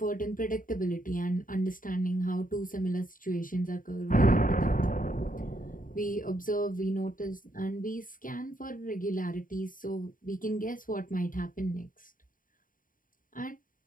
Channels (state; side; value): late; right; 0.40 ms